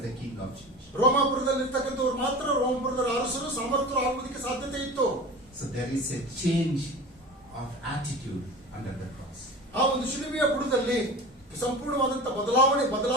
the king of Jews. ರೋಮಾಪುರದಲ್ಲಿರ್ತಕ್ಕಂಥವ್ರು ಮಾತ್ರ ರೋಮಾಪುರದ ಅರಸರು ಸಮರ್ಥರು ಆಗುವುದಕ್ಕೆ ಸಾಧ್ಯತೆ ಇತ್ತು. So there is a change of attitude under the cross. ಆ ಒಂದು ಶಿಲುಬೆಯ ಬುಡದಲ್ಲಿ ಸಂಪೂರ್ಣವಾದಂತ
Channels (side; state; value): both; normal; correlation 0.33